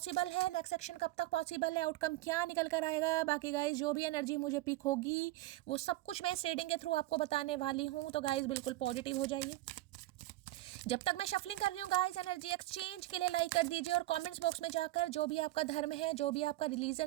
है, नेक्स्ट एक्शन कब तक पॉसिबल है, आउटकम क्या निकल कर आएगा। बाकी गाइज जो भी एनर्जी मुझे पिक होगी वो सब कुछ मैं इस रीडिंग के थ्रू आपको बताने वाली हूँ। तो गाइज बिल्कुल पॉजिटिव हो जाइए। जब तक मैं शफलिंग कर रही हूँ गाइस, एनर्जी एक्सचेंज के लिए लाइक कर दीजिए और कमेंट्स बॉक्स में जाकर जो भी आपका धर्म है, जो भी आपका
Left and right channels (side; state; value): left; quieter; 17.3 dB